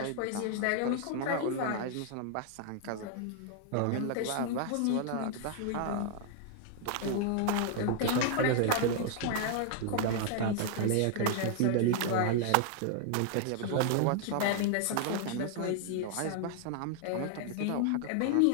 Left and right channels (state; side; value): different; both; correlation 0.00